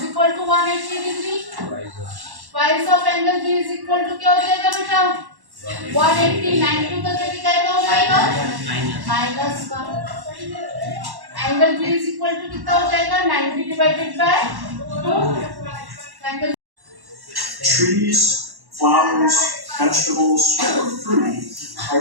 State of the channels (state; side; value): late; left; 1.1 ms